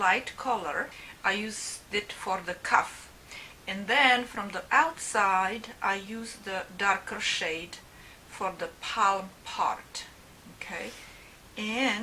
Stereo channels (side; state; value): both; identical; correlation 1.00